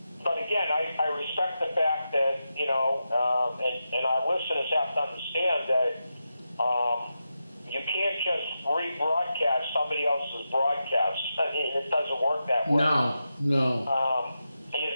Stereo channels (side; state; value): both; inverted; correlation -0.89